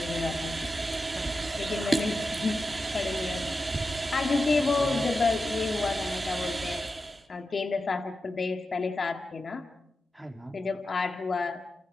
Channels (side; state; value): both; normal; correlation 0.90